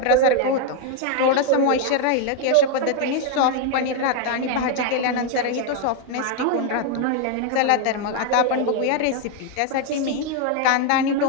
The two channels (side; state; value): both; different; correlation 0.00